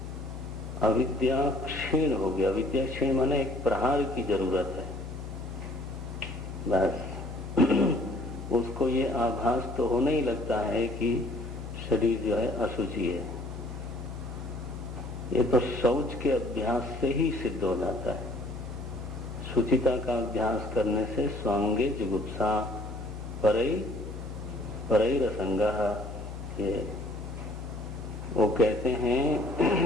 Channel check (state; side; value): noise; left; hum, 9 dB below the sound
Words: अविद्या क्षीण हो गया। अविद्या क्षीण माने एक प्रहार की जरूरत है बस। उसको ये आभास तो होने ही लगता है कि शरीर जो है अशुचि है। ये तो शौच के अभ्यास से ही सिद्ध हो जाता है। शुचिता का अभ्यास करने से स्वांगे जुगुप्सा परैरसंगः, ये वो कहते हैं